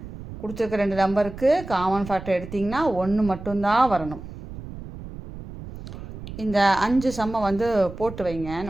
கொடுத்துருக்க 2 நம்பருக்கு காமன் ஃபேக்டர் எடுத்திங்கன்னா 1 மட்டும்தான் வரணும். இந்த 5 சம்மை வந்து போட்டு வைங்க.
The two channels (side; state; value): right; noise; rumble, 12 dB below the sound